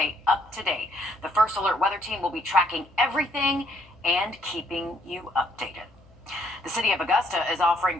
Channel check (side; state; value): left; noise; hum, 27 dB below the sound